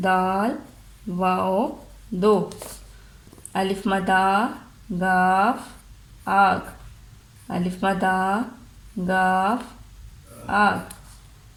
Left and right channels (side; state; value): both; identical; correlation 1.00